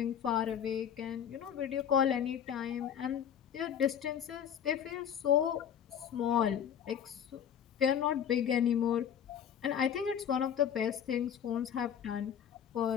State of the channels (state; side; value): quieter; right; 8.8 dB